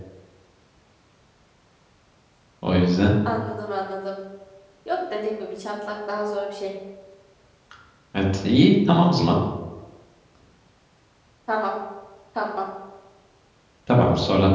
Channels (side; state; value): both; identical; correlation 1.00